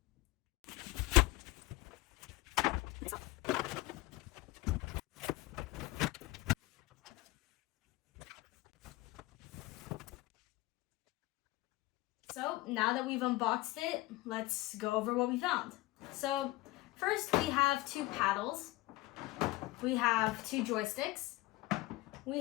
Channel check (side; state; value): right; quieter; 19.4 dB